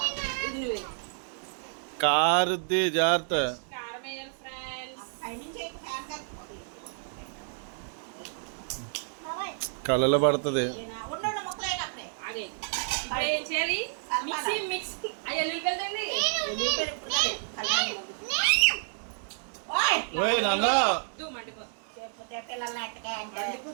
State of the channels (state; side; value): silent; left; digital silence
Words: ఇది నువ్వు కారుద్ది జాగ్రత్త. కారం వేయాలి ఫ్రెండ్స్. కళ్ళలో పడుతుంది. ఇప్పుడు ఏం చేయాలి? మిక్స్ అయ్యో వెళ్ళండి.